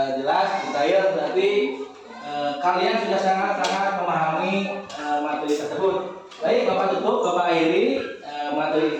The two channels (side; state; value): both; identical; correlation 1.00